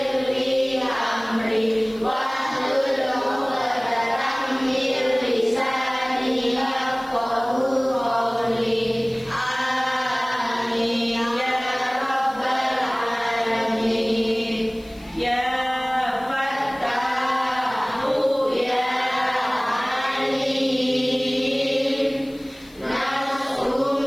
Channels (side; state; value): left; noise; hiss, 27 dB below the sound